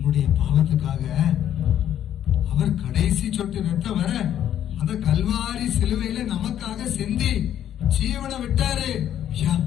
பாவத்துக்காக அவர் கடைசி சொட்டு ரத்தம் வர அந்த கல்வாரி சிலுவையில நமக்காக சிந்தி ஜீவனை விட்டாரு.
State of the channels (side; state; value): right; quieter; 10.7 dB